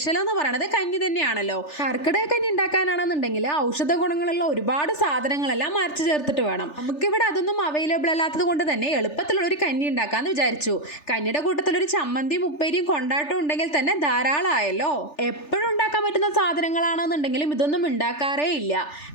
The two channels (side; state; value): right; late; 3.4 ms